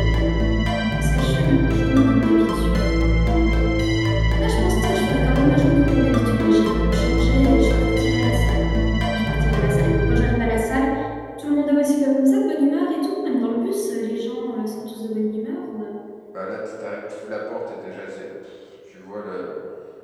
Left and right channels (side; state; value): both; identical; correlation 1.00